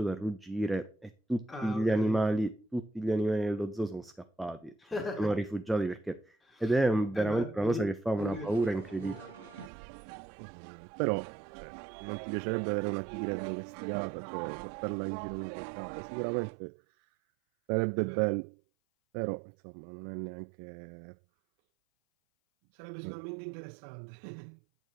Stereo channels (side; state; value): left; drops out; at 9.7 s